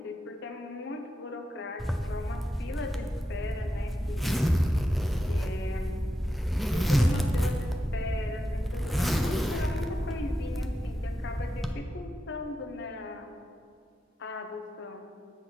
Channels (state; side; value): normal; both; correlation 0.88